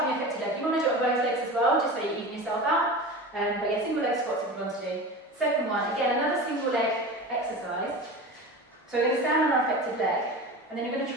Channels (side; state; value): both; normal; correlation 0.31